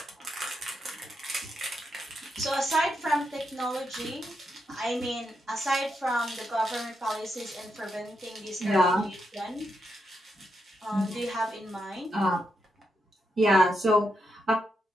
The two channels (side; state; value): both; normal; correlation 0.83